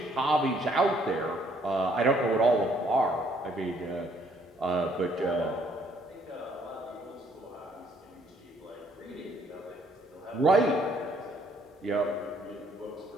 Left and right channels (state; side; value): normal; both; correlation 0.65